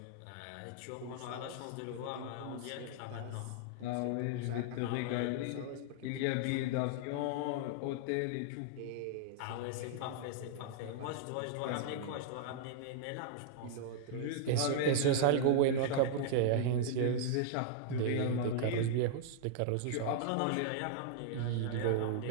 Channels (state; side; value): different; both; correlation -0.01